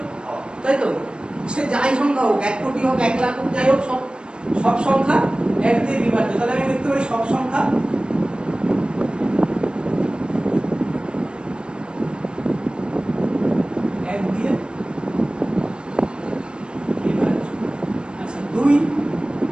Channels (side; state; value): left; late; 0.053 ms